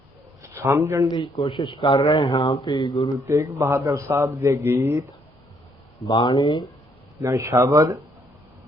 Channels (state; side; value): normal; both; correlation 0.69